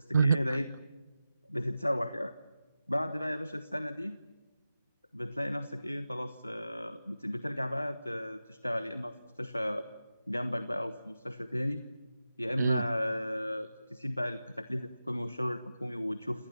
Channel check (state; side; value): inverted; both; correlation -0.93